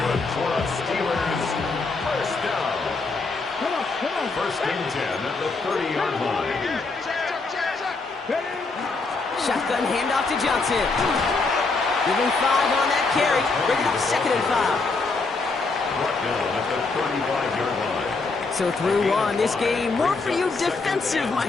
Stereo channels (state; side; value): quieter; right; 3.9 dB